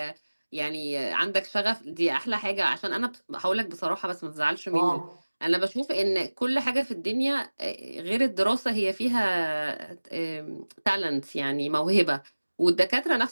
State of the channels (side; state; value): both; inverted; correlation -1.00